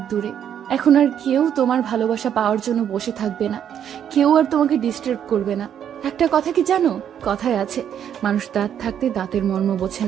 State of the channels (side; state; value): left; quieter; 9.2 dB